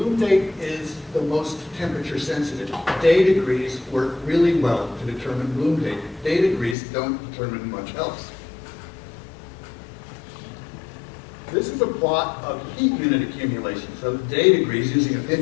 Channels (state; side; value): drops out; right; at 6.8 s